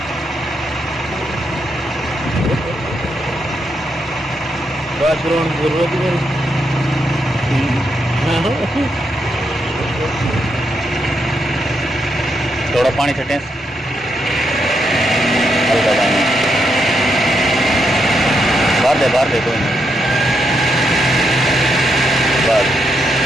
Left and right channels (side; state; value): both; normal; correlation 0.81